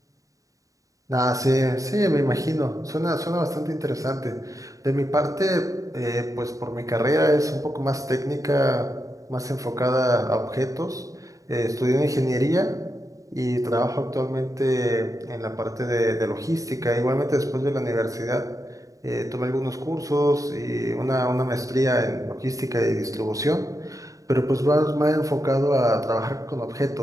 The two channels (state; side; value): late; left; 0.16 ms